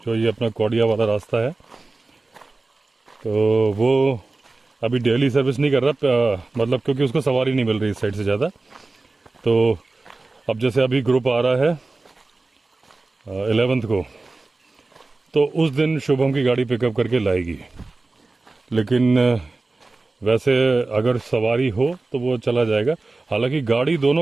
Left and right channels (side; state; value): left; quieter; 3.4 dB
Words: जो ये अपना कौड़िया वाला रास्ता है। तो वो अभी डेली सर्विस नहीं कर रहा, मतलब क्योंकि उसको सवारी नहीं मिल रही इस साइड से ज़्यादा। तो अब जैसे अभी ग्रुप आ रहा है 11th को, तो उस दिन शुभम की गाड़ी पिकअप करके लाएगी। लेकिन वैसे अगर सवारी हो तो वो चला जाएगा। हालांकि गाड़ी